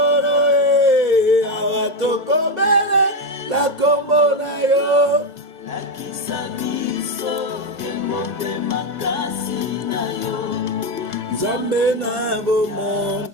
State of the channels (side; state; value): left; late; 2.0 ms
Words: awa tokobele la kombo na yo lakisa biso emote makasi na yo nzambe na bomo.